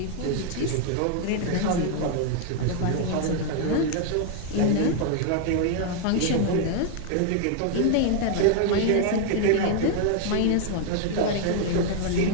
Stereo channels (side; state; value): both; different; correlation 0.00